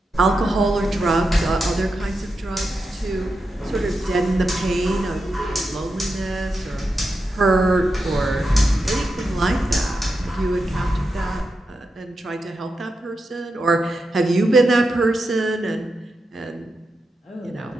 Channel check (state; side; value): normal; both; correlation 0.88